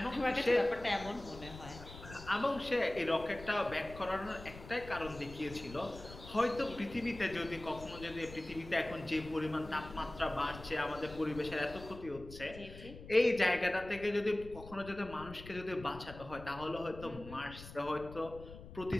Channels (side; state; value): left; noise; rumble, 15 dB below the sound